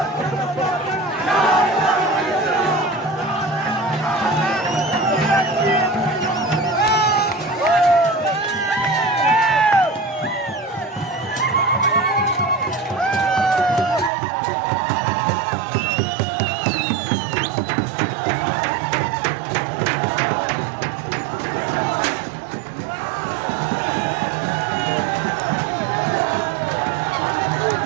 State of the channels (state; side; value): drops out; left; at 14.1 s